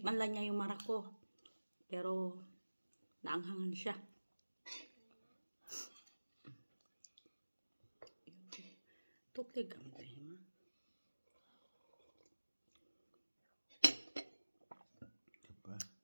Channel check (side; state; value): both; inverted; correlation -1.00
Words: lang niya yung marak ko. Pero, naanghangan siya. Tuklig ang tema. כפה.